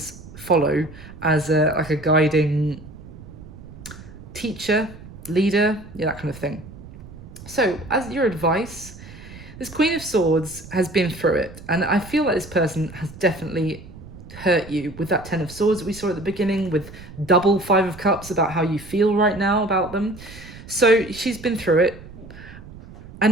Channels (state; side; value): noise; right; rumble, 16 dB below the sound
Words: follow as like a guiding teacher, leader, yeah, that kind of thing. So as your advice, this Queen of Swords has been through it, and I feel like this person has definitely hurt you with that Ten of Swords that we saw at the beginning, with double Five of Cups about how you feel right now about them. So she's been through it,